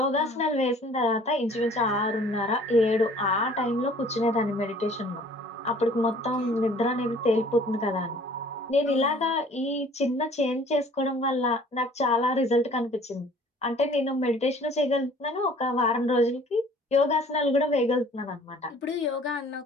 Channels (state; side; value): normal; both; correlation 0.53